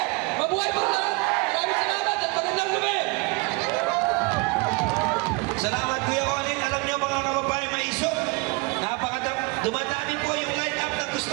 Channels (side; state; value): left; quieter; 28.1 dB